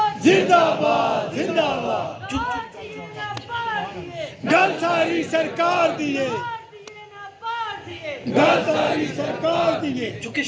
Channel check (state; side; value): identical; both; correlation 1.00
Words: زندہ باد، زندہ باد۔ گل ساری سرکار دیئے، گل ساری سرکار دیئے۔ چونکہ